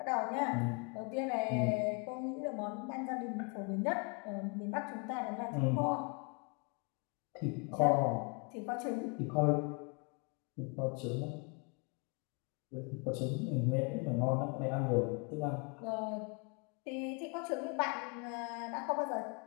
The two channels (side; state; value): right; quieter; 33.8 dB